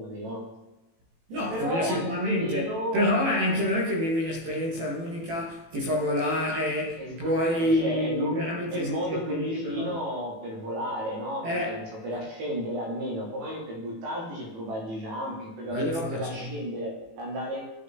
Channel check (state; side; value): late; left; 18 ms